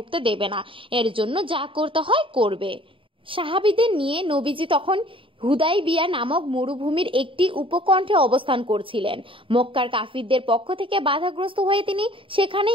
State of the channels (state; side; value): late; left; 0.25 ms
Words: দেবে না, এর জন্য যা করতে হয় করবে। সাহাবীদের নিয়ে নবীজি তখন হুদাইবিয়া নামক মরুভূমির একটি উপকণ্ঠে অবস্থান করছিলেন। মক্কার কাফিরদের পক্ষ থেকে বাধাগ্রস্ত হয়ে তিনি